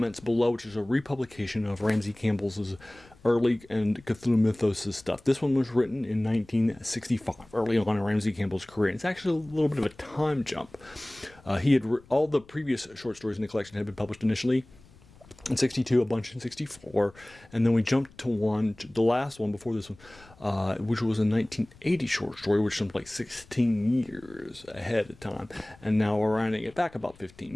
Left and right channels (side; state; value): left; noise; rumble, 25 dB below the sound